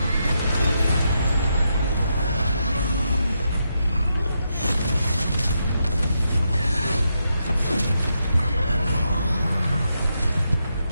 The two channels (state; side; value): inverted; both; correlation -0.83